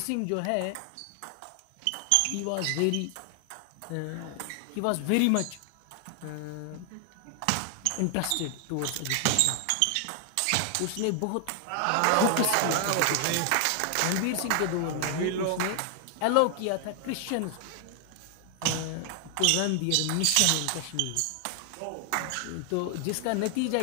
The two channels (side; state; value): both; different; correlation 0.00